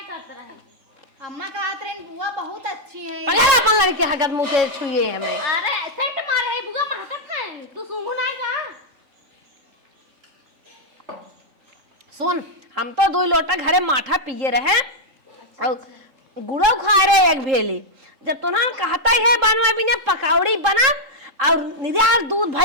करते रहे। अम्मा कहत रही बुआ बहुत अच्छी है। पहले अपन लड़के हगत मुंह से छुए हमें। अरे सेट मारे है बुआ महकत है तू सुंगू नहीं जा। सुन हम तो 2 लोटा घरे माठा पिए रहे और गुड़ो खा रहे एक भेली जब तो ना कहता ही है बनवा बिना पकौड़ी बना और निराल दूध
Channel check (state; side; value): late; left; 3.7 ms